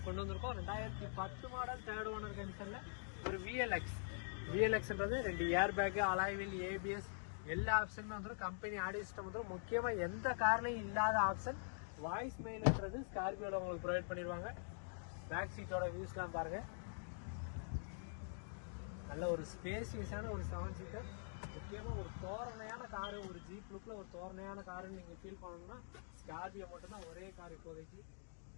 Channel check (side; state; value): right; silent; digital silence